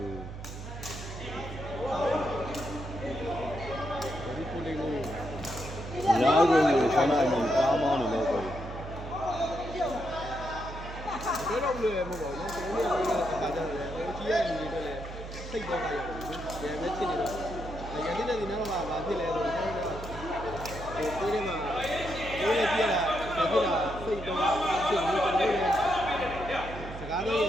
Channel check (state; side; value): noise; right; hum, 10 dB below the sound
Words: ုဒီကိုလေးကိုလာကိုဆန္ဒအမြင်ကားမောင်းနေလို့ပြောတယ်တော့လွယ်မဟုတ်ပါဘူးကျွန်တော်တို့ကကားကြတယ်ဟိုကြီးရဲ့လူတွေတော့လည်းစိတ်တော့ကြရတယ်ဒီပဲဖြစ်နေတော့ရန်တဲ့ဒီနောက်မှာဘာဖြစ်လဲဆိုတော့ဟိုကိုယ်ထဲမှာကိုယ်လည်းပြရတာဖြစ်တာစိတ်တော့ဖြစ်နေတယ်ကျွန်တော်လည်းစကားလေးရည